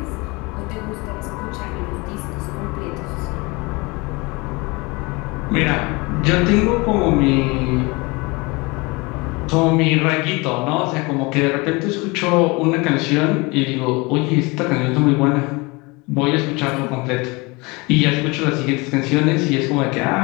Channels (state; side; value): quieter; right; 25.9 dB